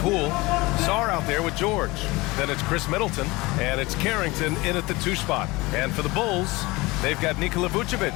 Sarr out there with George. Then it's Chris Middleton, and it's Carrington in at the 2 spot. And for the Bulls, they've got Nikola Vucevic.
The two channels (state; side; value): quieter; right; 22.4 dB